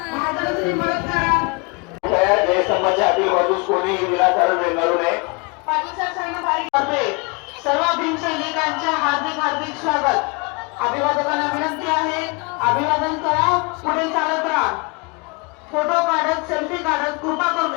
जयस्तंभाच्या आतील बाजूस कोणीही विनाकारण रेंगाळू नये. सर्व भीमसैनिकांचे हार्दिक हार्दिक स्वागत. अभिवादकांना विनंती आहे, अभिवादन करा, पुढे चालत राहा. फोटो काढत, सेल्फी काढत कृपा करून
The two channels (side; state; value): right; quieter; 30.9 dB